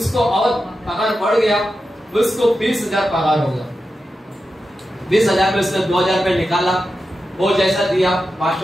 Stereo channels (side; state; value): both; normal; correlation 0.90